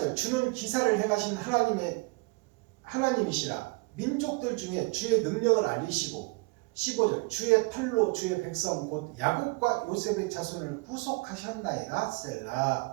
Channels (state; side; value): quieter; left; 28.0 dB